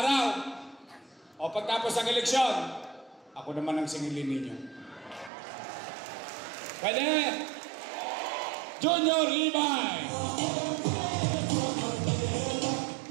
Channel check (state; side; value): drops out; left; at 5.3 s